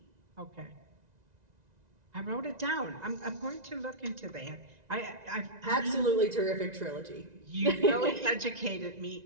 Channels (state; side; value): late; left; 1.9 ms